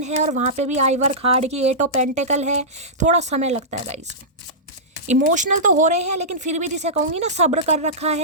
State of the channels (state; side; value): normal; both; correlation -0.16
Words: है और वहाँ पे भी आइवर खाड़ की 8 ऑफ पेंटिकल है, थोड़ा समय लगता है गाइस। इमोशनल तो हो रहे हैं लेकिन फिर भी जिसे कहूँगी ना सब्र कर रखा